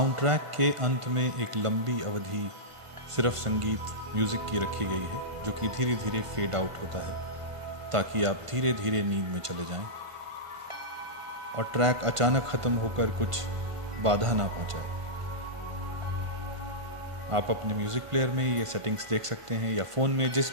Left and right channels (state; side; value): late; left; 1.5 ms